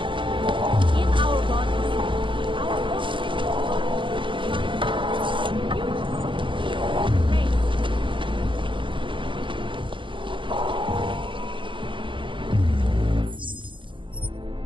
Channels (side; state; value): left; late; 0.24 ms